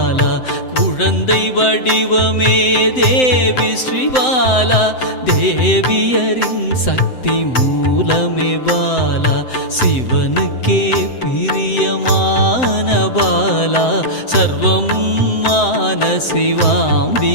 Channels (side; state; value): right; late; 7.8 ms